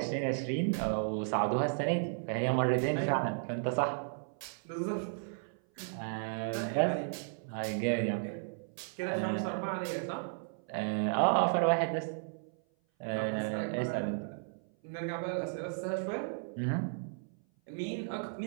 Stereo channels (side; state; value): left; silent; 55 dB below the other